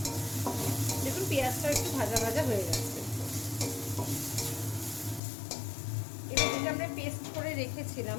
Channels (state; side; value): drops out; right; at 5.2 s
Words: দেখুন, পেঁয়াজটা একটু ভাজা ভাজা হয়ে গেছে। এবার যেটা আমরা পেস্ট করে রেখেছিলাম